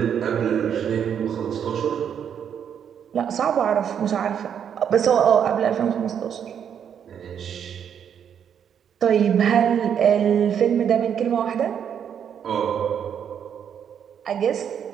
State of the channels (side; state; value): left; quieter; 8.3 dB